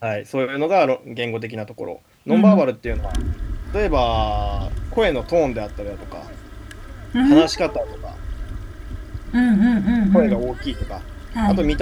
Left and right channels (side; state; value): both; identical; correlation 1.00